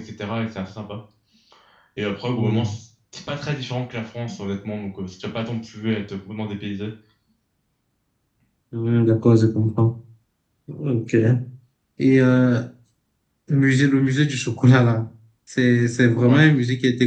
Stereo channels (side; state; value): both; identical; correlation 1.00